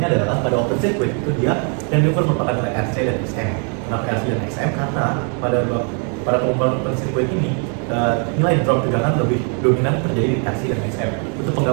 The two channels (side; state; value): left; quieter; 40.0 dB